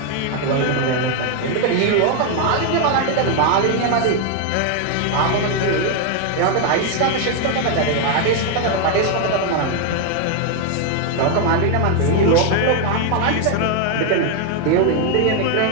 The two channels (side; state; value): both; different; correlation 0.01